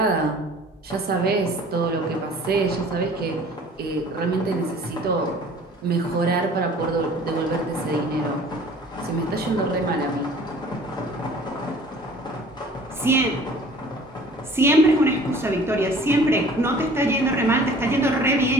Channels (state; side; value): normal; both; correlation 0.49